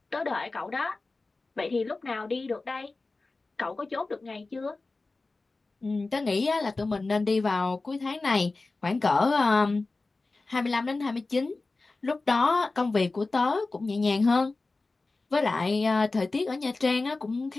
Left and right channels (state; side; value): quieter; right; 3.5 dB